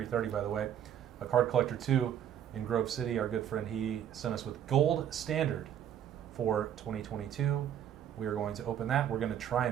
by the way. A Card Collector 2 in Grove City, our good friend, he sent us with Gold Standard for 2022. We are going to open that. We're going to try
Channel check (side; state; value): left; quieter; 9.9 dB